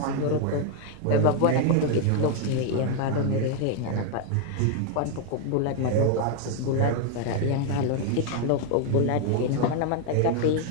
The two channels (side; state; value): both; different; correlation 0.01